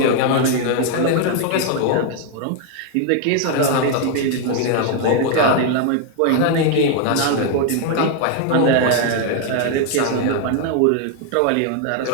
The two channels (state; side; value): different; both; correlation 0.00